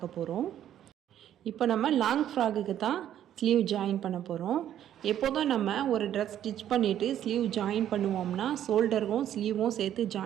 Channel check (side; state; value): left; quieter; 11.0 dB